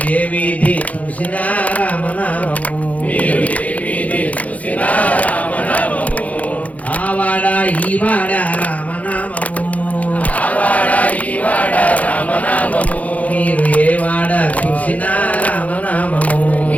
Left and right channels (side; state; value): right; late; 0.070 ms